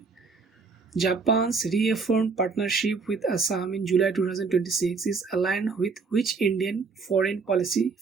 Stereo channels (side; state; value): left; quieter; 4.7 dB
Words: Japan's reaffirmed partnership with Assam in July 2026 is aligned with which Indian foreign policy